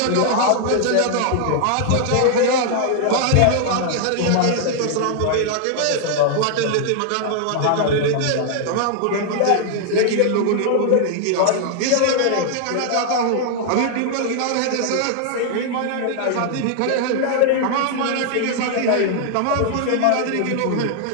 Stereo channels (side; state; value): both; different; correlation 0.00